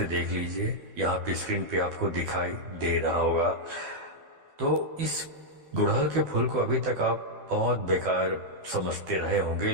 देख लीजिए, यहाँ पे स्क्रीन पे आपको दिखाई दे रहा होगा। तो इस गुड़हल के फूल को अभी तक आप बहुत बेकार समझते रहे होंगे,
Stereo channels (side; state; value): left; late; 12 ms